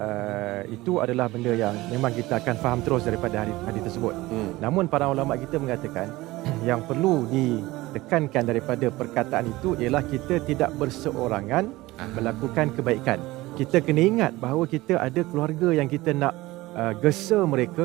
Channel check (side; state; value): left; quieter; 19.2 dB